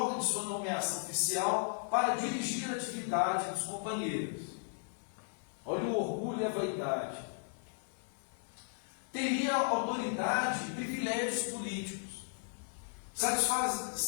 de sua nomeação oficial para dirigir a atividade dos companheiros. Olha o orgulho e a vaidade. Teria autoridade e privilégios políticos,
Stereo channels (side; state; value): right; silent; digital silence